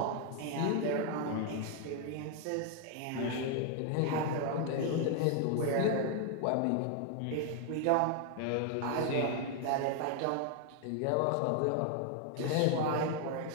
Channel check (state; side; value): different; both; correlation 0.00